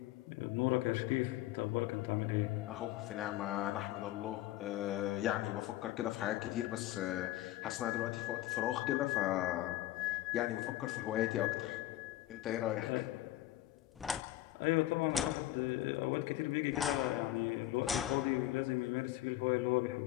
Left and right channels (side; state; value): right; quieter; 15.2 dB